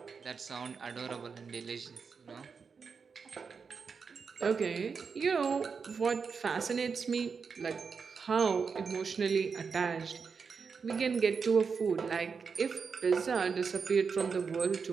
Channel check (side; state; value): left; quieter; 5.6 dB